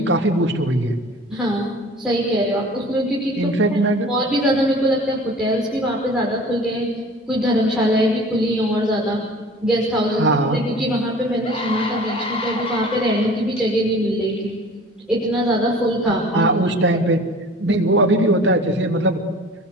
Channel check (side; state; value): both; normal; correlation 0.45